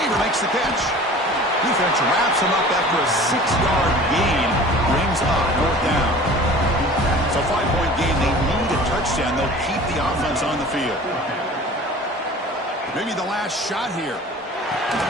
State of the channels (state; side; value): normal; both; correlation 0.43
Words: makes the catch. Defense wraps him up after a 6-yard gain. Brings up fourth down. So 5-point game. They need a touchdown. They'll keep the offense on the field. Maybe the last shot here.